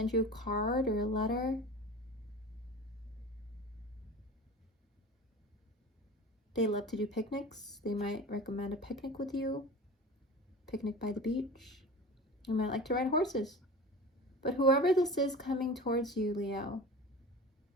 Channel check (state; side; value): normal; both; correlation 0.36